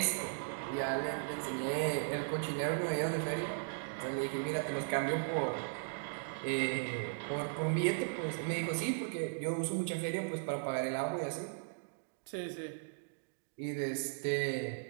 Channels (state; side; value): silent; left; digital silence